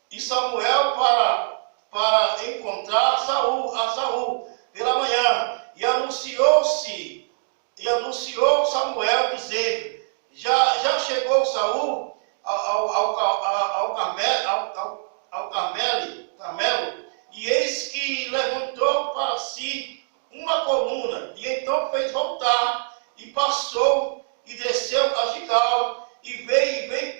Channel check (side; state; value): left; silent; digital silence